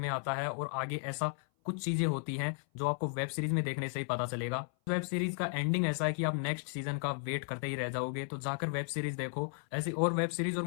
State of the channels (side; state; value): right; silent; 55 dB below the other